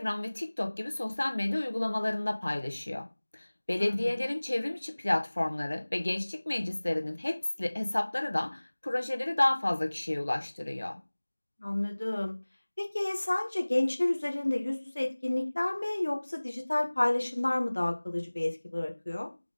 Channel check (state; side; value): inverted; both; correlation -1.00